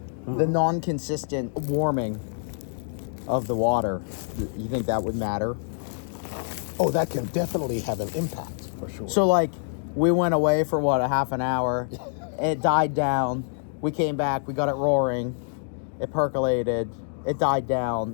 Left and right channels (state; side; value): silent; right; digital silence